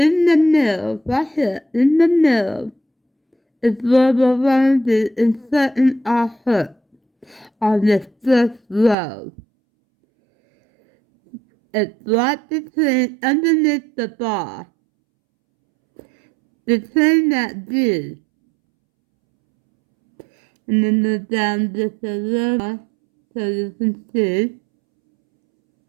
the middle, is where we're going to be inserting our hook on this first row. It's right between, underneath the bar, between that V, and then go down just a little more so you can see.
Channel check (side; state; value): left; drops out; at 9.0 s